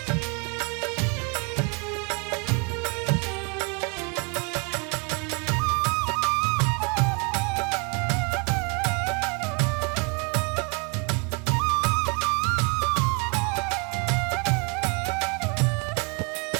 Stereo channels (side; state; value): left; quieter; 33.2 dB